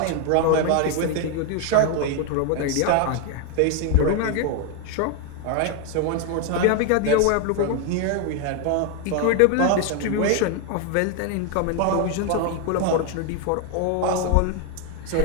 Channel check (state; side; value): different; both; correlation 0.01